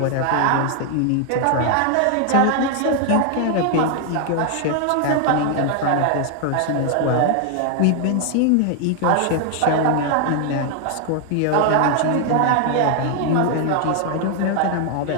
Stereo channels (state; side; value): different; both; correlation 0.00